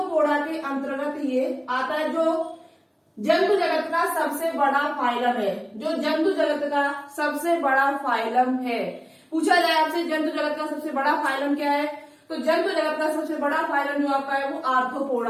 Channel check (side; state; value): both; identical; correlation 1.00